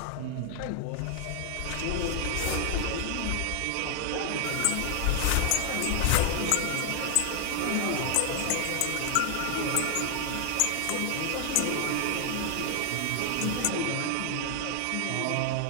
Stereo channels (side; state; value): both; different; correlation 0.00